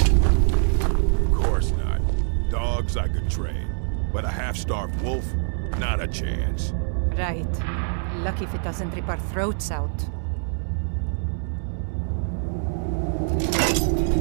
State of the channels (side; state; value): left; silent; 62 dB below the other